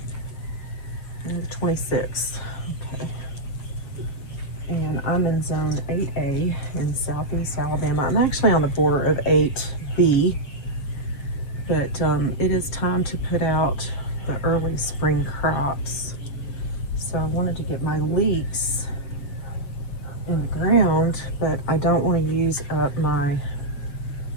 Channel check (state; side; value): late; right; 7.4 ms